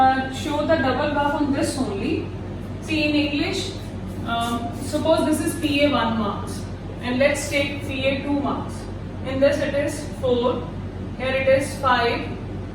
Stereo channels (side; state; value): both; identical; correlation 1.00